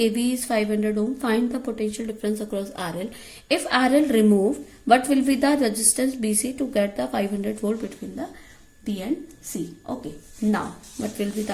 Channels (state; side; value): identical; both; correlation 1.00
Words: is 500 ohm, find the potential difference across RL. If RL removed, what will be the resistance BC to get the 500 volt between the B and C. Okay, now what will be the